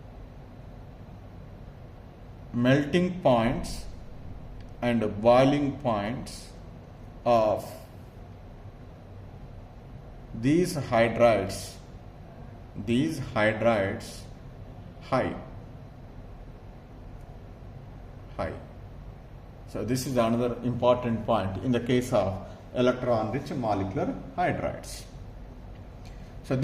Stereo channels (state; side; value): identical; both; correlation 1.00